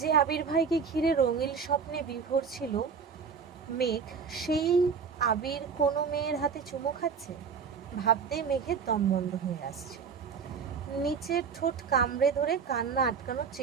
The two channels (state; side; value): quieter; left; 6.0 dB